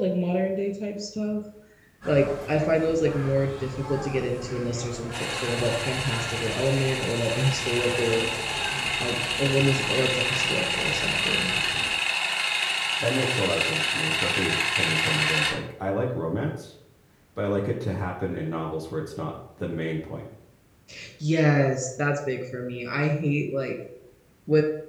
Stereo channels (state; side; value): identical; both; correlation 1.00